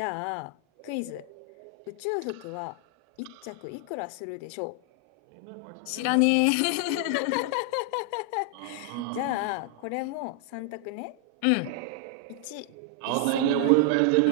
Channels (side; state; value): both; different; correlation 0.00